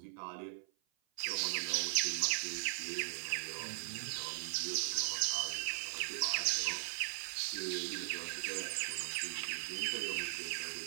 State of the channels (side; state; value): left; silent; 52 dB below the other